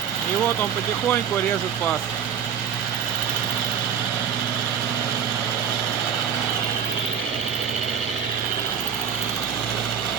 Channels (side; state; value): left; quieter; 7.9 dB